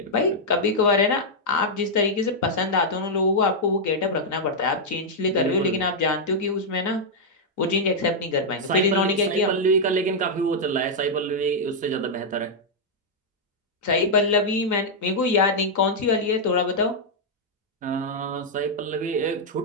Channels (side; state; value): both; normal; correlation -0.05